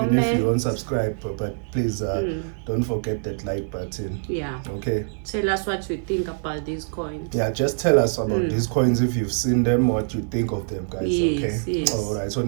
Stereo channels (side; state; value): left; silent; 63 dB below the other